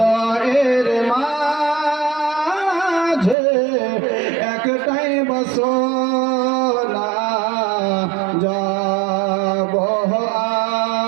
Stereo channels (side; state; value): left; drops out; at 3.4 s